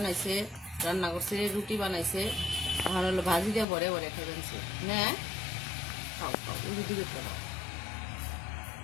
রান্না করছে, রুটি বানাইছে, এখন হলো ভাজি দিয়ে ভরে ভরে খাইবেন না। খাও খাও, রুটি দিয়ে খাও।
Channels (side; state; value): right; drops out; at 3.7 s